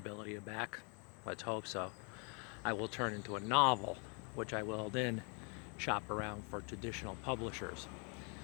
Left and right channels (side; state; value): right; quieter; 36.3 dB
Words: back, let's hope so, I will turn into a novel, which I will then shop around for traditional publishers.